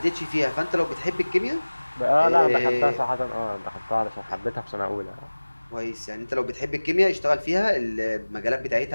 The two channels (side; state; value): both; inverted; correlation -1.00